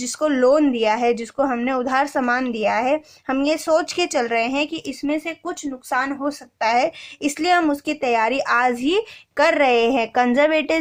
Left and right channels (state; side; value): identical; both; correlation 1.00